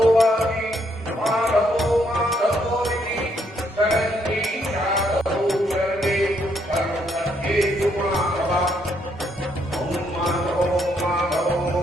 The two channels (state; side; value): normal; both; correlation 0.73